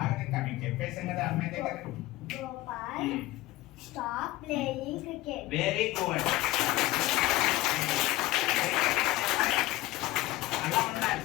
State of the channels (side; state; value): right; quieter; 17.8 dB